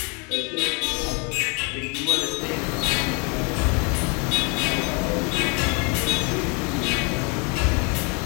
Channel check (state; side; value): quieter; right; 32.6 dB